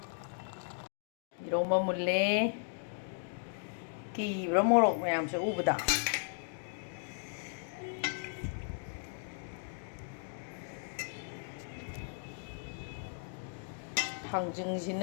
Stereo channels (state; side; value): silent; right; digital silence